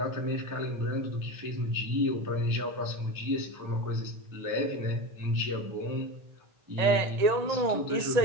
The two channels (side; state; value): left; late; 1.8 ms